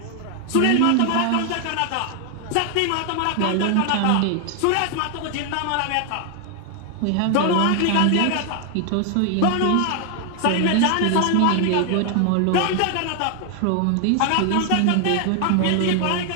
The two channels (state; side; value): different; both; correlation 0.00